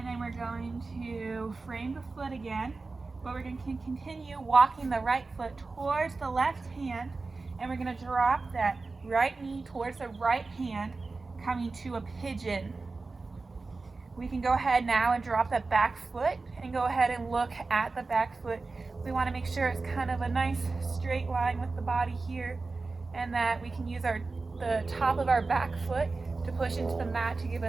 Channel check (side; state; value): left; quieter; 3.8 dB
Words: then we're going to frame the foot again, but we're going to continue walking the right foot towards the left hand, and we're going to drop that right knee towards the right hand, coming to a pigeon. We can go ahead now and drop that back foot and go ahead and look at the back foot. We want to make sure it's kind of a nice straight line with the body here, and that we can use the top of our back foot to push into the mat to give